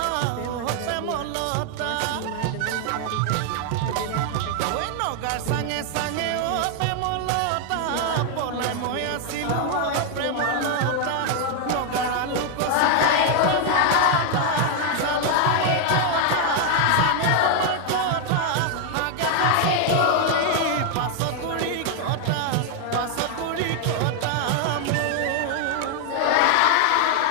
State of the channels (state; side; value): different; both; correlation 0.00